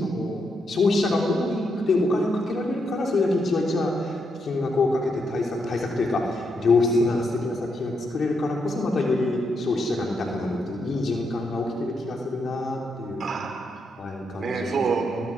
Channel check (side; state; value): both; normal; correlation 0.81